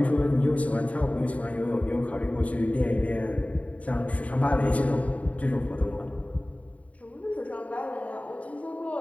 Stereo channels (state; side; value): late; right; 0.068 ms